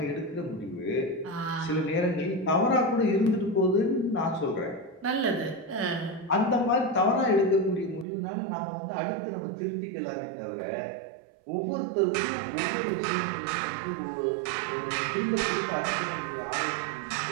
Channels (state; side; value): drops out; left; at 8.1 s